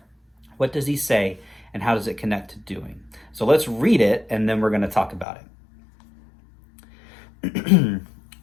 What does he say and how does it connect to doing? So let's read it and then we're going to talk about it.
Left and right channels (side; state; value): right; drops out; at 5.2 s